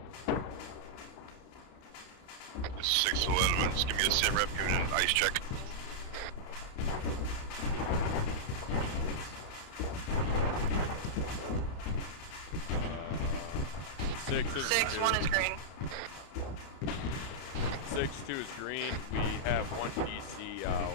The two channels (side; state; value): right; late; 31 ms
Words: This is 6 to elements. Give me a sit rep, give me an ice check. Six, 1 is green. 6-2 is green. We have 1 DC,